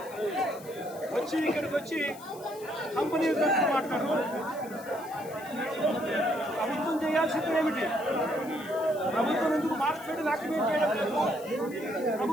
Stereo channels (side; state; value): left; noise; hiss, 19 dB below the sound